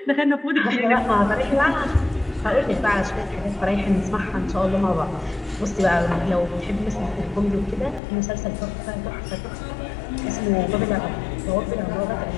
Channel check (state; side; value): drops out; right; at 8.0 s